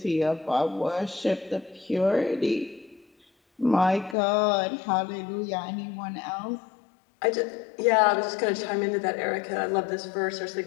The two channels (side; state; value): right; drops out; at 4.2 s